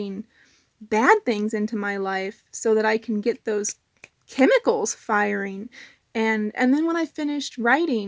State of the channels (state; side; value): identical; both; correlation 1.00